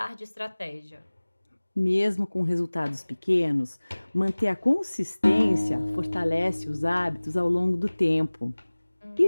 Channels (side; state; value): both; inverted; correlation -1.00